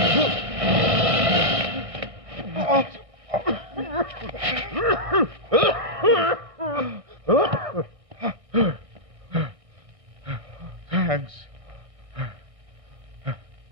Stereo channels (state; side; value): late; left; 1.6 ms